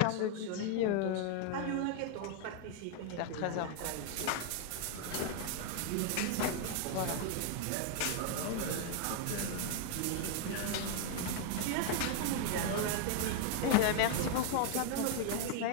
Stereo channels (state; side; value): different; both; correlation 0.00